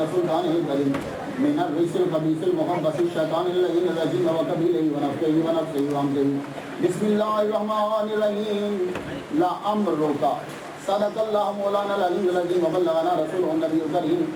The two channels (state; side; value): identical; both; correlation 1.00